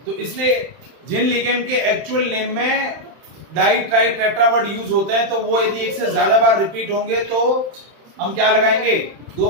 तो इसलिए जिन लिगेंड के एक्चुअल नेम में डाई ट्राई टेट्रावर्ड यूज होते हैं तो वो यदि एक से ज्यादा बार रिपीट होंगे तो हम क्या लगाएंगे, 2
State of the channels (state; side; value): late; left; 31 ms